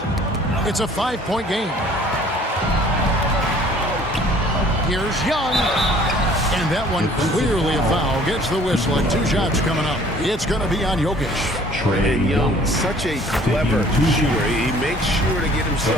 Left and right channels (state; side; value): normal; both; correlation 0.54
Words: It's a 5-point game. Here's Young. And that one clearly a foul. Gets the whistle and 2 shots coming up. It's going to be on Jokic. And Young, such a clever shooter. He makes sure to get